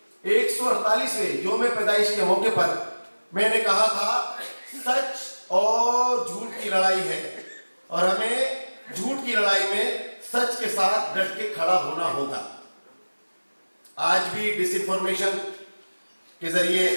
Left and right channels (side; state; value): both; inverted; correlation -1.00